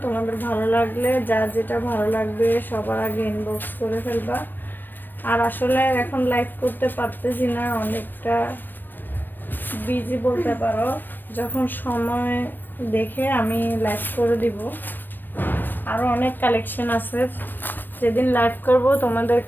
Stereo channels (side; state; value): right; late; 0.093 ms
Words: তোমাদের ভালো লাগলে যার যেটা ভালো লাগবে সবার আগে ইনবক্স করে ফেলবা। আর আসলে এখন লাইভ করতে পারতেছি না, অনেকটা বিজি বলতে পারো। যখন সময় দেখে আমি লাইভ করে দিব। আরও অনেক কালেকশন আছে, যেদিন লাইভ করব